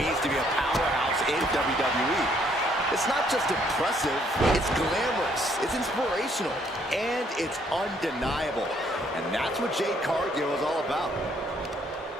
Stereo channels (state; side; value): normal; both; correlation 0.67